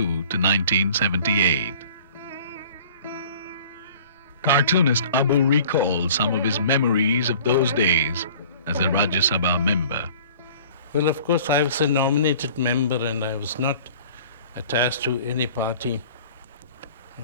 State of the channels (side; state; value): both; inverted; correlation -0.48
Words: 1978. Cartoonist Abu recalled some of his memories of those days as a Rajya Sabha member. Well, of course, I was a nominated member and I was not attached to any party.